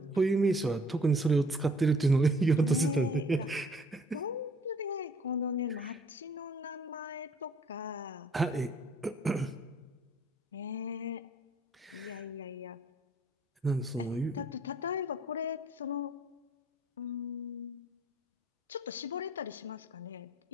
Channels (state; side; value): normal; both; correlation 0.59